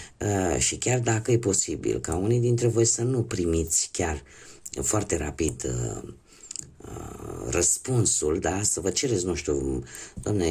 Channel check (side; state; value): both; identical; correlation 1.00